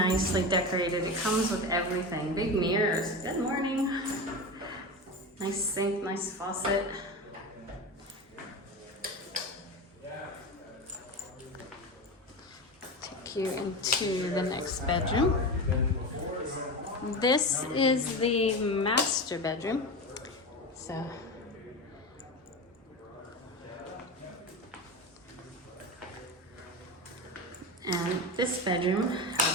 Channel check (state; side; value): normal; both; correlation 0.23